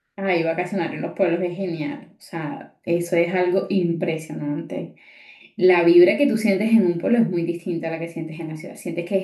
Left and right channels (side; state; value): both; identical; correlation 1.00